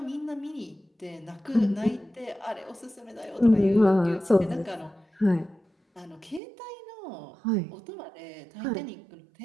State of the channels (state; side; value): drops out; left; at 6.4 s